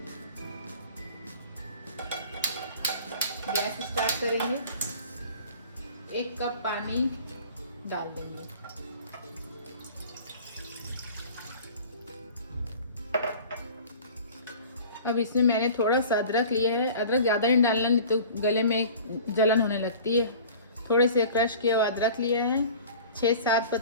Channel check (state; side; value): inverted; both; correlation -0.43